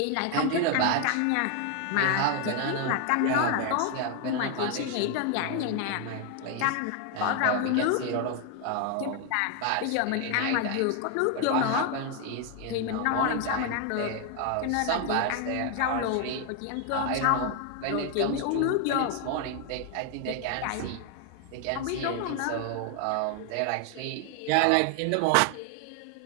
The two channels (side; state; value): both; different; correlation 0.01